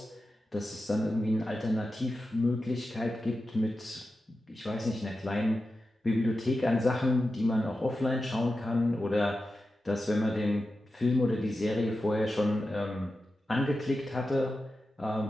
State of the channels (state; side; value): normal; both; correlation 0.92